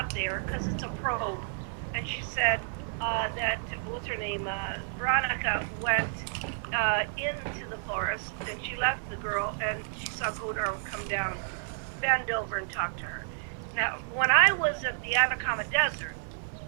it there because it's a probe, and she said that what's her name, Veronica went into the forest, and she left the girl, and she saw Godar come down, bend over, and talk to her. Now, when I was at the Atacama Desert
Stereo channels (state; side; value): silent; left; 57 dB below the other